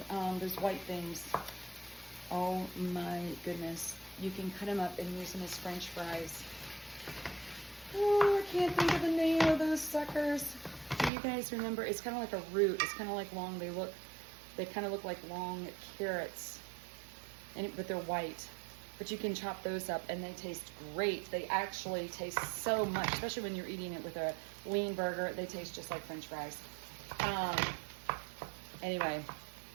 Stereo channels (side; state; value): left; drops out; at 11.1 s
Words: Those white things. Oh my goodness. You can cut them up and use them as French fries. Oh, I can't think of the name of those suckers. Do you guys remember? It's kind of like a root. It's kind of like long. They kind of look like long carrots, but they're white. But you can chop those up and they taste great. They actually taste so much, especially when you're eating it with a lean burger. They taste just like French fries. Anyway,